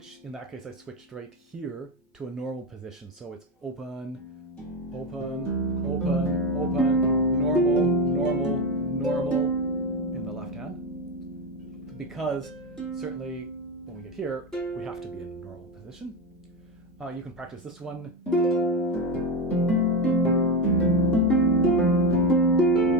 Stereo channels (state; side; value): normal; both; correlation 0.15